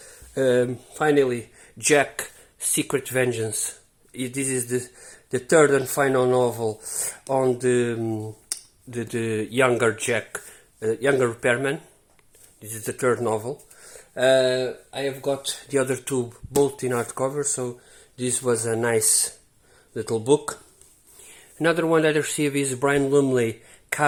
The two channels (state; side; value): identical; both; correlation 1.00